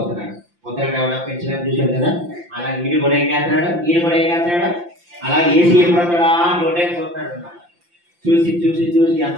పొద్దున ఎవడో పెంచడానికి చూసాడు కదా, అలా ఈడు కూడా ఏం చేస్తున్నాడు, అలా ఏసీ ఎప్పుడొస్తాడా నోటే చూస్తున్నాడు అన్నమాట. చూసి చూసి చూసి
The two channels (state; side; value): late; left; 5.8 ms